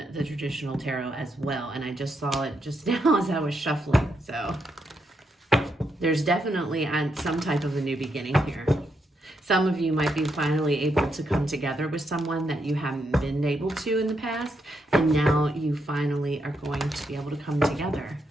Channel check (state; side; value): normal; both; correlation 0.80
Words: the traditional tarot as well, and I just saw it just now as I was shuffling. So there's definitely some type of a new beginning here. Some of you might be finally able to come together with someone that you haven't been able to in the past, and now you finally are going to be able to come together